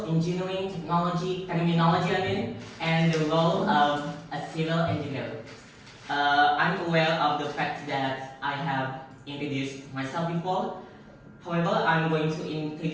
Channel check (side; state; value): both; identical; correlation 1.00